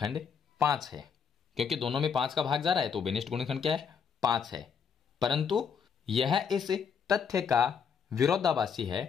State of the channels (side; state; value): right; quieter; 6.8 dB